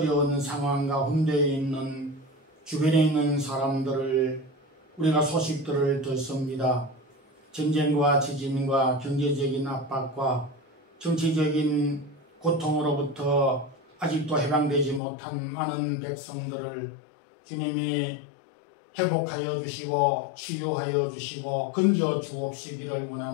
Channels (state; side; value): drops out; right; at 15.0 s